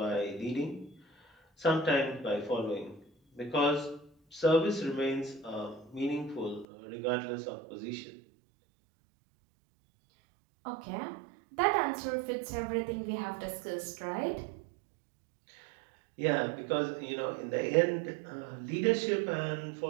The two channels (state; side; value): drops out; left; at 6.7 s